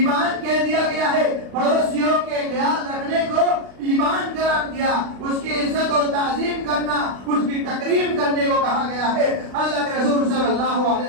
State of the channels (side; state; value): left; late; 36 ms